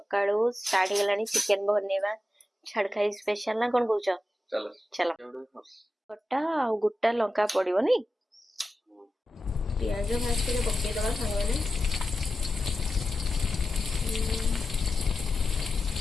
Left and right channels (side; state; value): both; normal; correlation 0.91